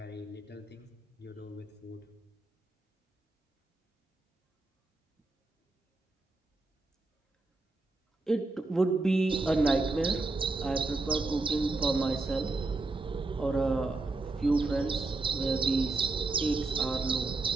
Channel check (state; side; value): quieter; left; 3.2 dB